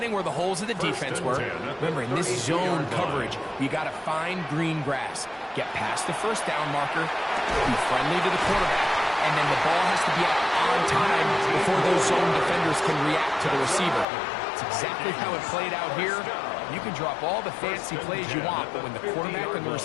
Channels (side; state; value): right; drops out; at 14.1 s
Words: where the holes of the defense were. Remember, in this zone coverage, you got to find green grass. Get past the first down marker, be friendly to the quarterback, and then the ball has to be out on time before those zone defenders can react to the receiver. It's exactly how it played out here. You can drop all the fancy plays you want, but when the quarterback and the